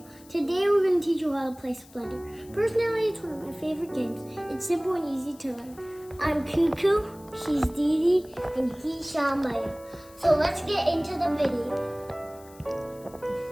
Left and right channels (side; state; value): left; noise; hiss, 24 dB below the sound